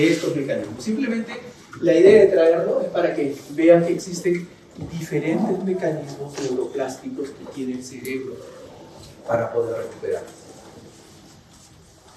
mecanismos. Simplemente la idea de traerlo es para que vean que existen diferentes mecanismos neuroplásticos que tiene el cerebro para poder recuperar.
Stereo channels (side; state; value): both; identical; correlation 1.00